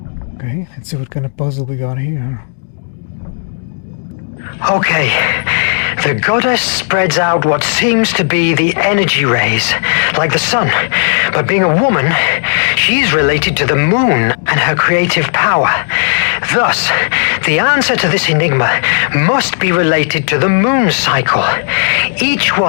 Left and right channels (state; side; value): silent; right; digital silence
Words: Okay, let's see what kind of puzzle we got here. Okay, the goddess spreads out what seems to be the energy rays, like the sun. But being a woman, she's related to the moon and her creative power. Thus, the answer to this enigma must be related to the moon cycle. Each